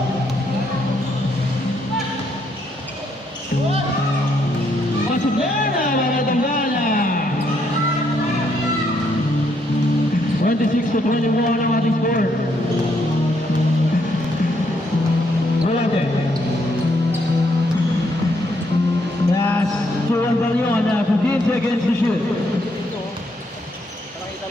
Pasok na mga Tambala. 26-21 ang ating score. Volante. Yes, to Andaliona, 15 seconds to shoot.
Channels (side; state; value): both; normal; correlation 0.74